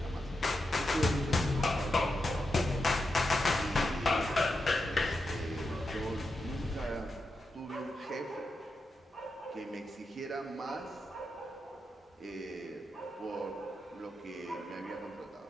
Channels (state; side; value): normal; both; correlation 0.87